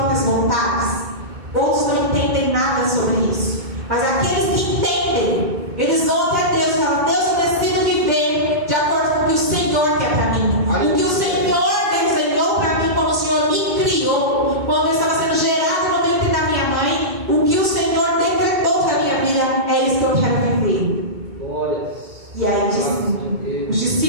vontades. Outros não entendem nada sobre isso. Mas aqueles que entendem, eles vão até Deus e falam: Deus, eu decido viver de acordo com o que o Senhor quer para mim.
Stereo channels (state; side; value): late; left; 2.2 ms